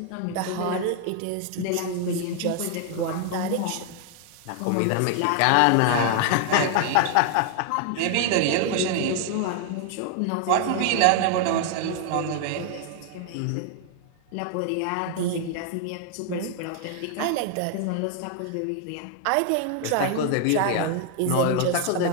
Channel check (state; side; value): different; both; correlation 0.00